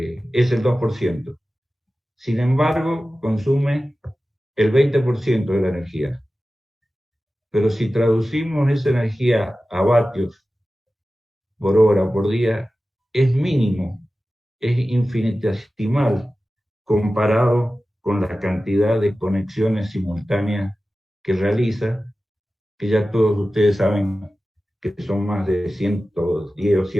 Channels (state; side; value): normal; both; correlation 0.95